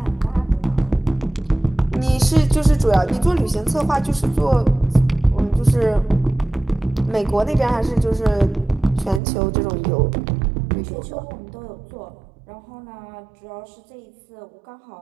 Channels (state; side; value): drops out; left; at 9.2 s